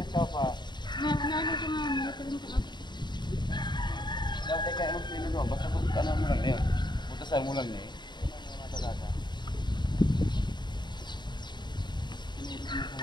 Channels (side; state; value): right; late; 0.21 ms